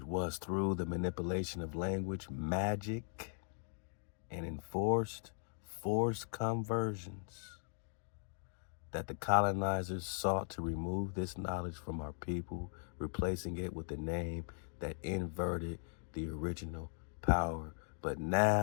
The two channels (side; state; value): right; silent; digital silence